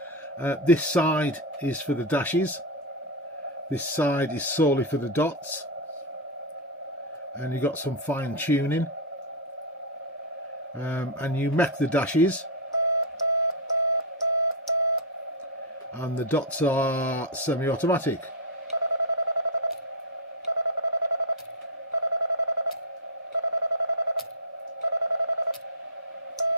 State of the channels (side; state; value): both; normal; correlation 0.00